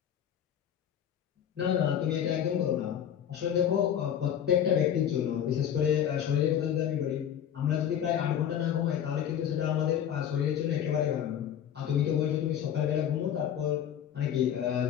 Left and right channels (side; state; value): right; quieter; 9.6 dB